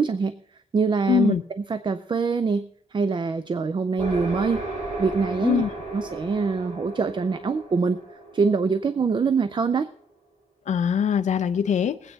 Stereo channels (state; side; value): normal; both; correlation 0.69